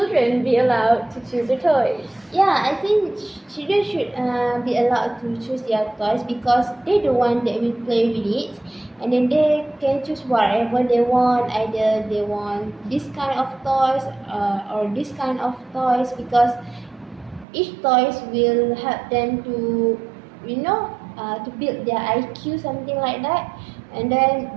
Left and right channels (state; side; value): drops out; left; at 17.4 s